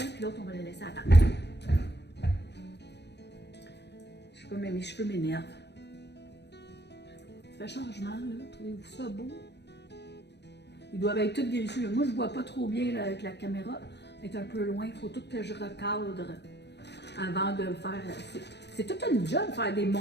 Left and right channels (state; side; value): late; right; 0.50 ms